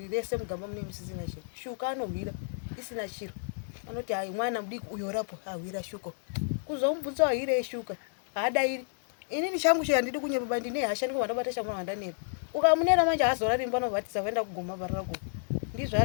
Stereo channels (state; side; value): silent; right; digital silence